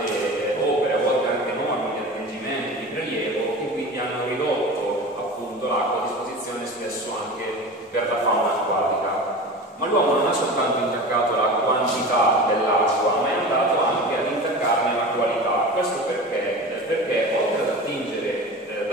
opere, a volte anche norme di attingimento, di prelievo, che quindi hanno ridotto appunto l'acqua a disposizione spesso anche per la fauna acquatica. Ma l'uomo non ha soltanto intaccato la quantità dell'acqua, ma è andato anche ad intaccarne la qualità. Questo perché? Perché oltre ad attingere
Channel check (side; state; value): both; normal; correlation 0.33